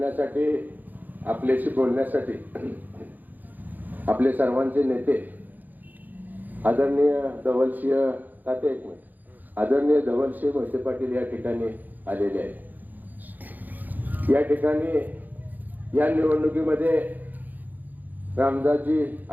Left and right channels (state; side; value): late; left; 0.084 ms